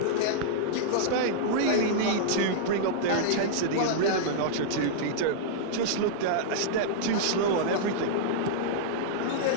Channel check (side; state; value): both; different; correlation -0.02